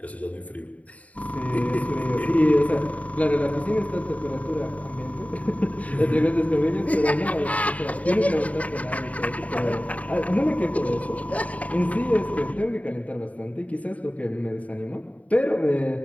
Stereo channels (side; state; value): right; late; 0.069 ms